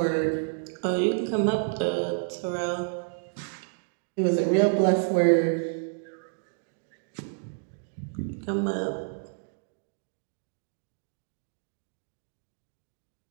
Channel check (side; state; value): left; silent; digital silence